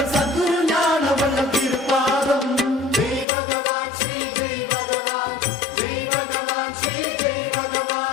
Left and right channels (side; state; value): right; drops out; at 3.2 s